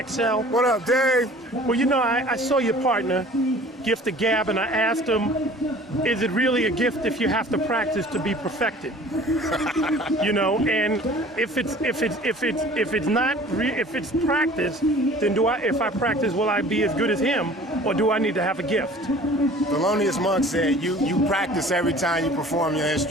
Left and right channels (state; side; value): normal; both; correlation 0.47